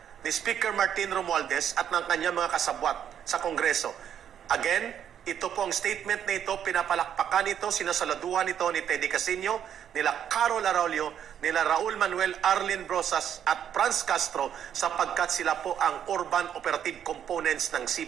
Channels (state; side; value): quieter; left; 9.3 dB